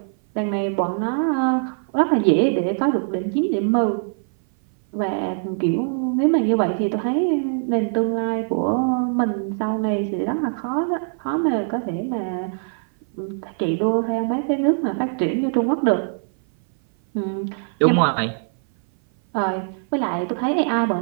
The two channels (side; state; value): left; silent; 57 dB below the other